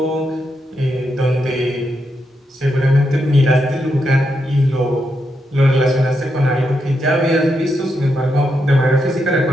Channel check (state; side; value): normal; both; correlation 0.83